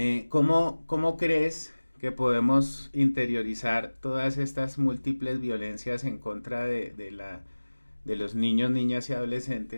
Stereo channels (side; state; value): both; inverted; correlation -1.00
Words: ¿cómo crees que podemos interiorizar todas estas múltiples violencias en contra de los niños, niñas y